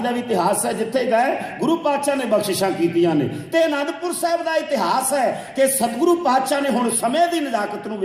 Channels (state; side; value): identical; both; correlation 1.00